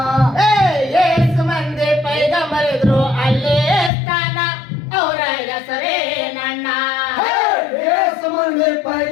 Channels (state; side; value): drops out; right; at 3.9 s